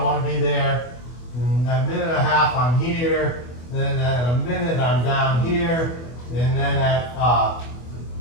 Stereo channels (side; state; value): right; late; 24 ms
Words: want to be there. And at a minute and a half, I'm here. Then at a minute, I'm down here. And then at